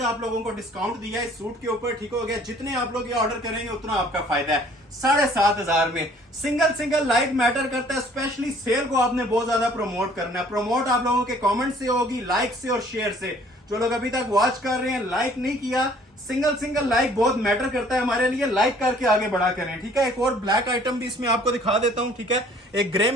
आप लोगों को डिस्काउंट दिया है इस सूट के ऊपर, ठीक हो गया। जितने आप लोग ये ऑर्डर करेंगे उतना आपका फायदा है। 7,500 में सिंगल लाइक मैटर करता है, स्पेशली सेल को आपने बहुत ज्यादा प्रमोट करना है। प्रमोट आप लोगों के कमेंट से होगी, लाइक से और शेयर से। जो लोग अभी तक वॉच कर रहे हैं लाइक नहीं किया, सिंगल लाइक बहुत मैटर करता है हमारे लिए, लाइक करके आगे बढ़ा करें, ठीक है। एक और ब्लैक आइटम भी इसमें आपको दिखा देता हूं, ठीक है। एक ग्रे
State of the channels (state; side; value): normal; both; correlation 0.56